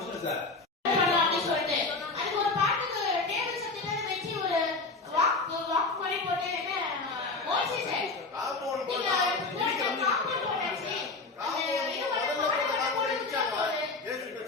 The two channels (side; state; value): right; quieter; 3.7 dB